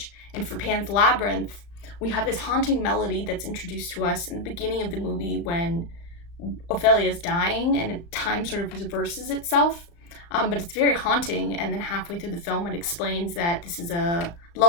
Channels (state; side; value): late; right; 35 ms